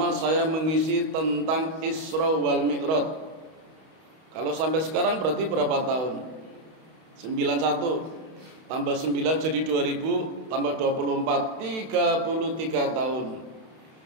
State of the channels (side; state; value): left; late; 32 ms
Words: saya mengisi tentang Isra wal Mi'raj. Kalau sampai sekarang berarti berapa tahun? 91 tambah 9 jadi 2000 tambah 24 33 tahun.